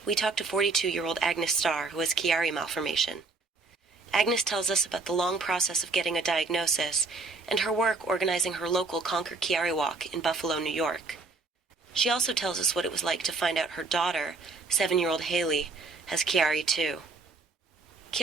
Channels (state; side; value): quieter; left; 3.8 dB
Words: we talked to 42-year-old Agnes Starr, who has Chiari Malformation. Agnes tells us about the long process of getting a diagnosis and her work organizing her local Conquer Chiari walk in Buffalo, New York. She also tells us what it was like to find out her daughter, 7-year-old Hailey, has Chiari too.